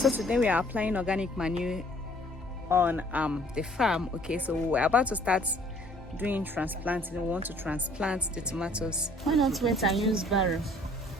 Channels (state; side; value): normal; both; correlation 0.58